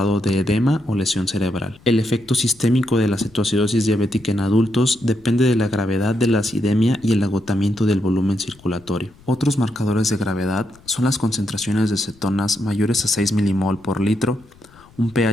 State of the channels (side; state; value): left; noise; rumble, 27 dB below the sound